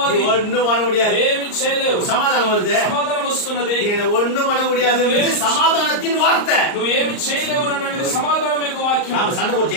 ஒண்ணும் பண்ண முடியாது. ఏమీ చేయలేవు. சமாதானம் வருது. సమాధానం వస్తున్నది. ஒண்ணும் பண்ண முடியாது. சமாதானத்தின் வார்த்தை. నువ్వు ఏమి చేయలేవు అన్నది సమాధానం యొక్క వాక్యం. நாம சண்டை போட்டு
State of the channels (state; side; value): late; right; 38 ms